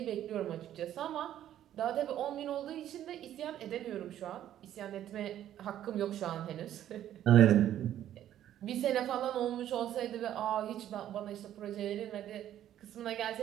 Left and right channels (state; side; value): quieter; left; 11.6 dB